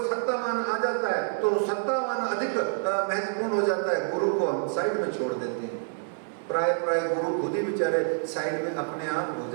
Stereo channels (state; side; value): silent; left; digital silence